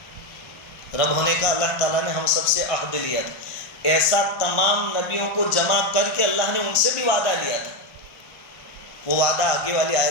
رب ہونے کا اللہ تعالیٰ نے ہم سب سے عہد لیا تھا، ایسا تمام نبیوں کو جمع کر کے اللہ نے ان سے بھی وعدہ لیا تھا۔ وہ وعدہ آگے والی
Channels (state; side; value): late; right; 1.5 ms